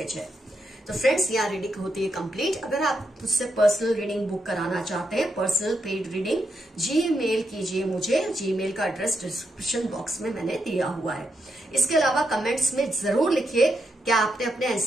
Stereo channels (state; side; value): normal; both; correlation 0.82